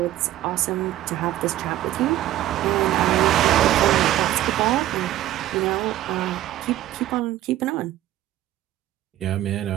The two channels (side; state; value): left; quieter; 13.9 dB